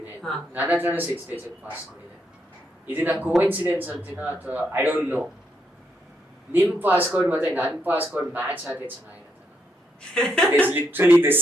ಇದೆ, ನನ್ನ ಹತ್ರನೂ 6 ಡಿಜಿಟ್ ಪಾಸ್ಕೋಡ್ ಇದೆ. ಇದನ್ನ ಕೋಇನ್ಸಿಡೆನ್ಸ್ ಅಂತೀನಾ ಅಥವಾ ಐ ಡೋಂಟ್ ನೋ. ನಿಮ್ ಪಾಸ್ಕೋಡ್ ಮತ್ತೆ ನನ್ನ ಪಾಸ್ಕೋಡ್ ಮ್ಯಾಚ್ ಆದ್ರೆ ಚೆನ್ನಾಗಿರುತ್ತೆ. It is literally the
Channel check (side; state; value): both; normal; correlation 0.78